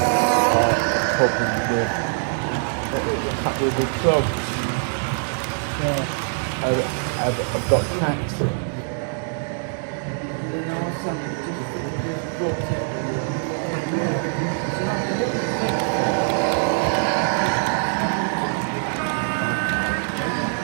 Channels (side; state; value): left; silent; 61 dB below the other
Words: With the clubs. Yeah, I've got tracks.